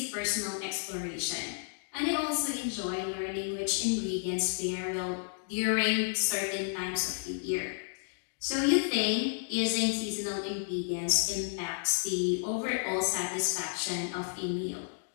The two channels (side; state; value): right; silent; digital silence